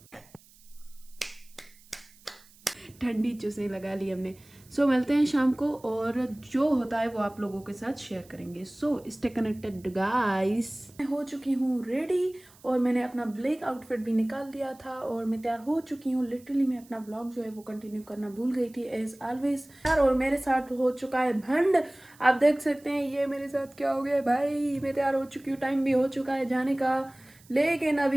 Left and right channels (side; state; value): right; noise; hiss, 26 dB below the sound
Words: ठंडी चुस्सें लगा ली हमने। सो मिलते हैं शाम को, और जो होता है वो आप लोगों के साथ शेयर करेंगे। So stay connected guys. मैं हो चुकी हूँ रेडी, और मैंने अपना ब्लैक आउटफिट भी निकाल दिया था और मैं तैयार हो चुकी हूँ। लिटरली मैं अपना ब्लॉग जो है वो कंटिन्यू करना भूल गई थी एज ऑलवेज। और मेरे साथ हो चुका है भंड। आप देख सकते हैं ये मेरे साथ क्या हो गया भाई। मैं तैयार हो चुकी हूँ, टाइम भी हो चुका है जाने का, लेकिन